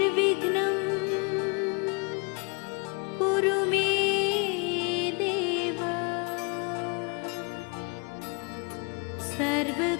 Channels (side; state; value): right; quieter; 33.2 dB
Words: कुरु मे देव